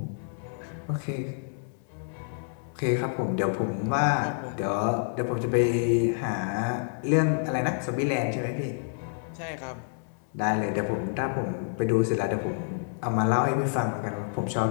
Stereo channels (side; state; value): right; silent; digital silence